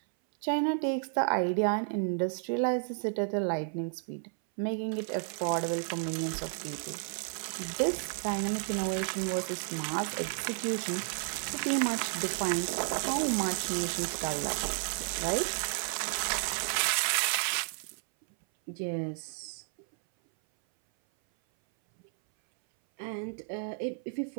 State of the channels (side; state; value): left; silent; 56 dB below the other